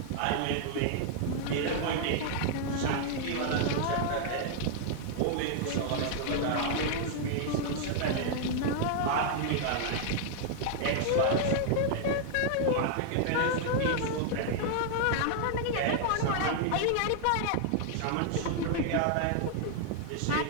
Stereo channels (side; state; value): both; different; correlation -0.01